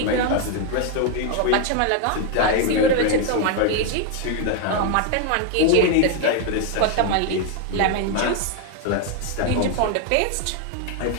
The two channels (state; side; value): different; both; correlation 0.01